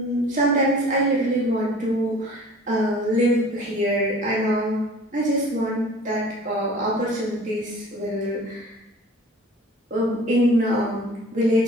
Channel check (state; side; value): normal; both; correlation 0.46